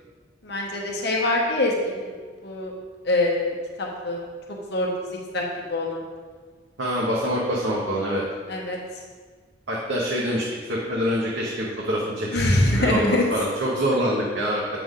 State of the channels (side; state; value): both; normal; correlation 0.33